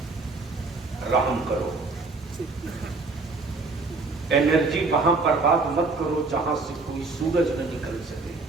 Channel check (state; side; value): quieter; left; 3.8 dB